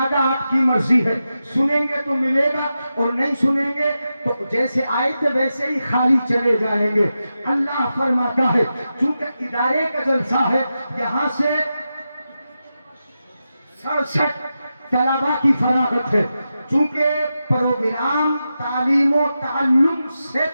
آپ کی مرضی ہے۔ سنیں گے تو ملے گا اور نہیں سنیں گے تو جیسے آئے تھے ویسے ہی خالی چلے جائیں گے۔ اللہ فرماتا ہے چونکہ ادارے کا جلسہ ہے، یہاں سے 67 طلباء کی فراغت ہے، چونکہ پروگرام تعلیم و تعلم سے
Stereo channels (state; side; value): inverted; both; correlation -0.90